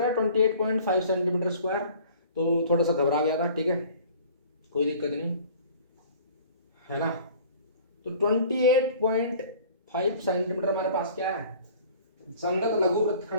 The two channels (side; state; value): both; inverted; correlation -0.48